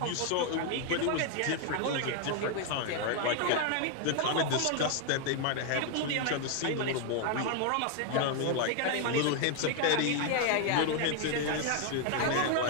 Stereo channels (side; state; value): both; different; correlation 0.01